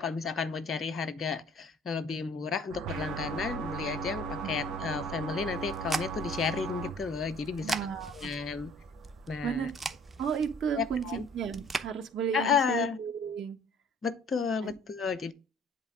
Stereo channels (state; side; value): normal; both; correlation 0.54